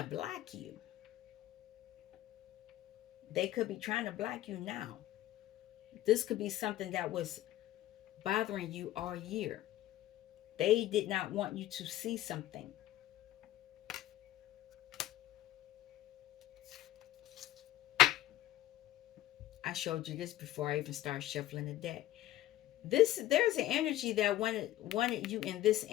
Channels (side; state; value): right; quieter; 14.3 dB